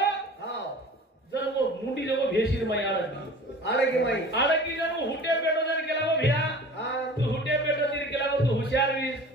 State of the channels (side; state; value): both; normal; correlation 0.41